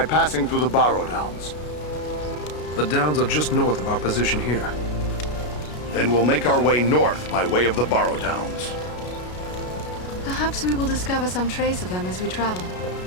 passing through the Barrow Downs. The downs are just north of our position here. Then we'll make our way north by way of the Barrow Downs. Perhaps we will discover some trace of them as we travel.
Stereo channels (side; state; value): right; late; 33 ms